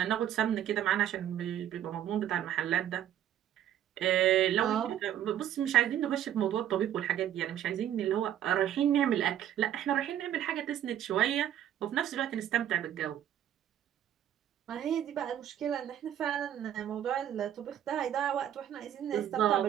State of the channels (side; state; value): left; quieter; 10.9 dB